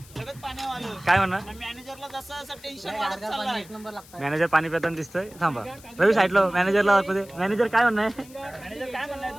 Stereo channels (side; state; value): left; noise; hiss, 22 dB below the sound